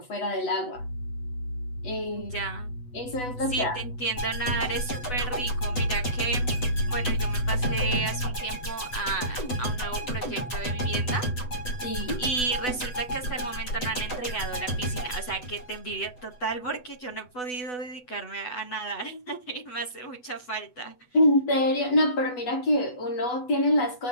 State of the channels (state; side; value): late; right; 8.1 ms